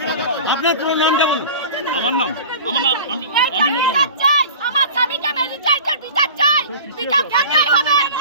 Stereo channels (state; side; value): inverted; both; correlation -0.37